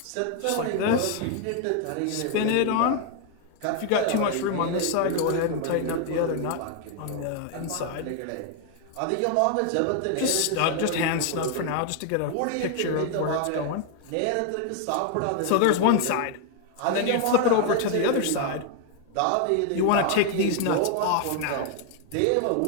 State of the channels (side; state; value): both; different; correlation 0.00